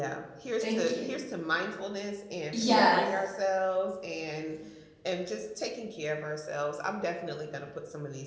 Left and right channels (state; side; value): identical; both; correlation 1.00